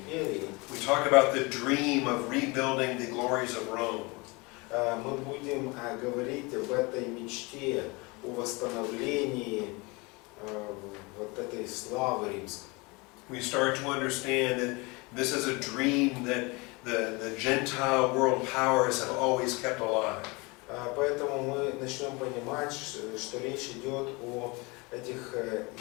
we talk about the dream of rebuilding the glories of Rome. мы будем говорить об этой мечте, о восстановлении вот этой славы римской. We start to understand that this is a dream that the Gentile world powers have always kept alive. Поэтому мы начнем понимать, что речь идет о этих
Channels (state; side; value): quieter; right; 26.5 dB